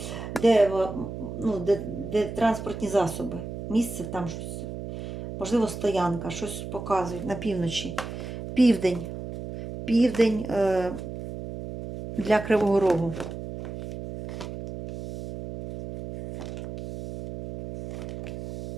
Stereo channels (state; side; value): noise; right; hum, 8 dB below the sound